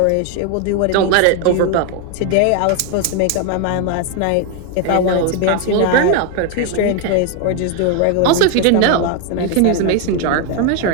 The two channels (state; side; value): different; both; correlation 0.01